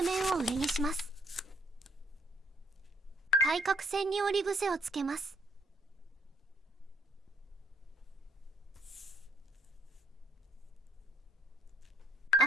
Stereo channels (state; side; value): normal; both; correlation 0.64